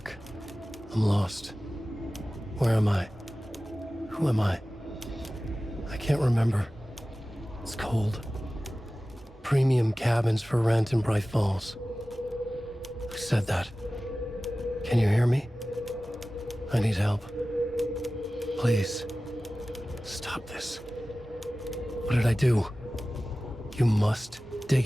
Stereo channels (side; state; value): both; normal; correlation 0.96